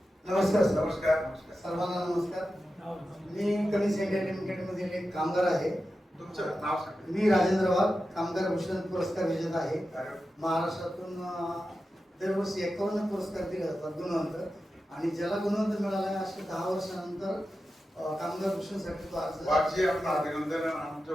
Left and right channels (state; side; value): normal; both; correlation 0.92